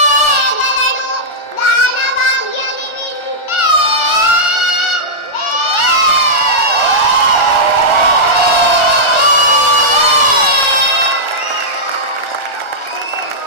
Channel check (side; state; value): right; late; 1.4 ms